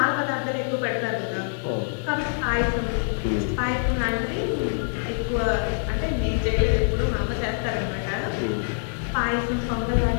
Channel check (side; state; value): right; silent; digital silence